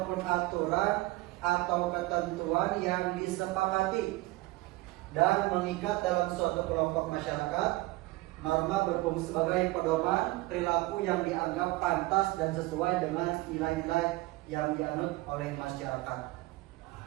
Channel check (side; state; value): left; quieter; 20.4 dB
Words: aturan atau ketentuan yang disepakati dan mengikat dalam suatu kelompok masyarakat. Norma berfungsi sebagai pedoman perilaku yang dianggap pantas dan sesuai dengan nilai-nilai yang dianut oleh masyarakat.